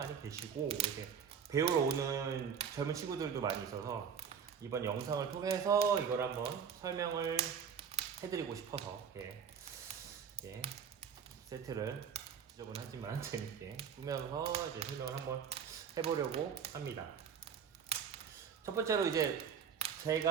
계시고, 이렇게 배우러 오는 젊은 친구들도 많이 있어서 이번 영상을 통해서 이걸 한번 설명을 해드리고 싶어서 세트를 지저분하지만 재밌게 꾸며서 이제 설명을 한번 해보려고 합니다. 첫 번째로 이제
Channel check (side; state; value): left; quieter; 7.2 dB